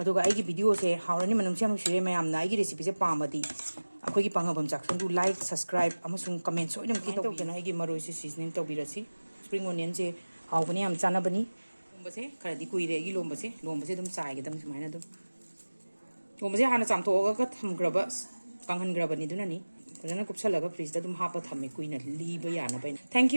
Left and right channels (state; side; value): inverted; both; correlation -1.00